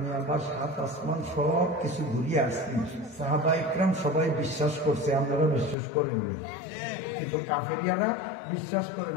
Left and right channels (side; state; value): right; drops out; at 5.8 s